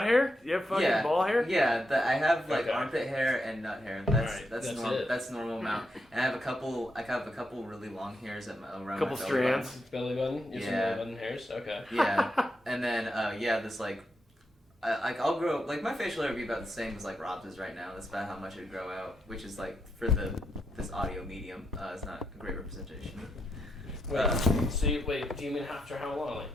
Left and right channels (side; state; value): both; normal; correlation 0.82